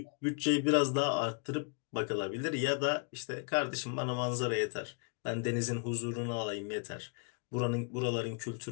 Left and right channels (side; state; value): right; quieter; 39.9 dB